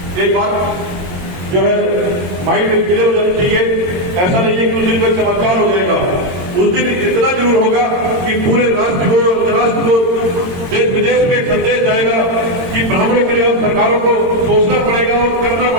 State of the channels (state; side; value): late; left; 22 ms